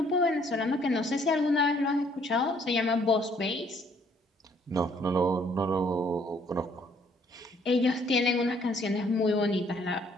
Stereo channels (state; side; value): normal; both; correlation 0.63